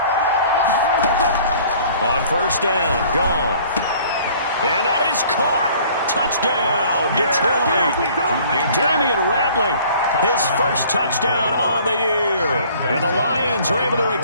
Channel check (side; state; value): both; inverted; correlation -0.53